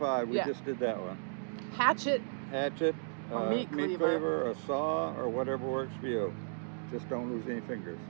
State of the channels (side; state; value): left; silent; digital silence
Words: We just did that one. Hatchet, or meat cleaver, a saw, or whatever works for you. Just don't lose any fingers.